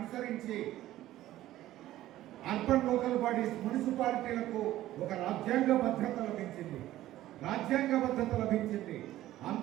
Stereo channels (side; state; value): left; quieter; 14.5 dB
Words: అర్బన్ లోకల్ బాడీస్ మున్సిపాలిటీలకు ఒక రాజ్యాంగ భద్రత లభించింది. రాజ్యాంగ భద్రత లభించింది.